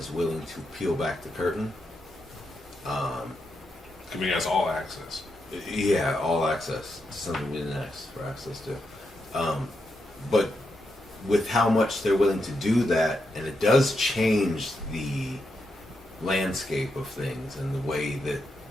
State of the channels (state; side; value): normal; both; correlation 0.83